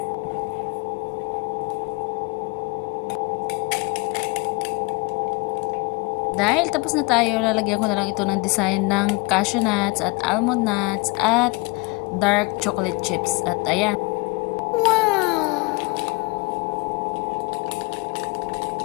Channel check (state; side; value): quieter; right; 28.0 dB